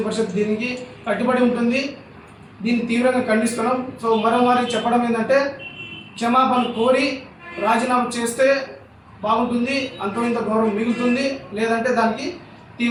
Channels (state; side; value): identical; both; correlation 1.00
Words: పరిషత్ దీనికి కట్టుబడి ఉంటుంది. దీన్ని తీవ్రంగా ఖండిస్తున్నాం. సో మరోమారి చెప్పడం ఏంటంటే, క్షమాపణ కోరి రాజీనామా చేస్తే బాగుంటుంది, అంతో ఇంత గౌరవం మిగులుతుంది. లేదంటే దానికి